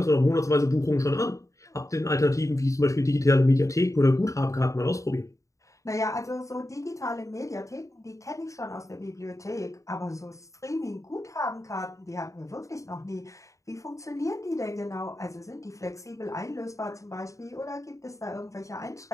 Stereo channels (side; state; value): right; late; 0.16 ms